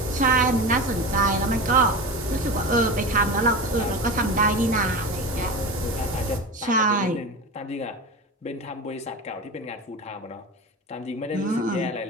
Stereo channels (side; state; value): both; normal; correlation 0.27